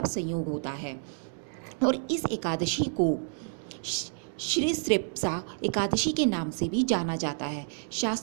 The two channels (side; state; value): left; silent; digital silence